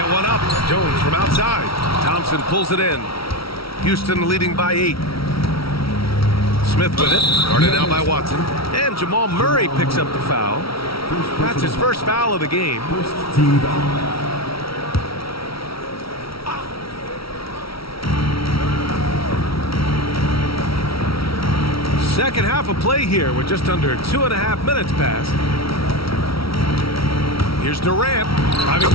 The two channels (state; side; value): late; right; 0.75 ms